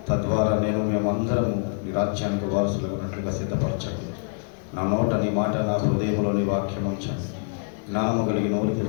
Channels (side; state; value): right; silent; 59 dB below the other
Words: తద్వారా మేమందరము నీ రాజ్యానికి వారసులు ఉన్నట్లుగా సిద్ధపరచండి. నా నోట నీ మాట, నా హృదయంలో నీ వాక్యం ఉంచండి. జ్ఞానము కలిగి నోరు